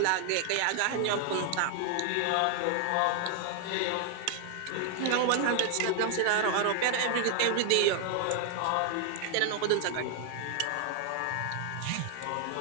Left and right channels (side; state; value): both; different; correlation 0.00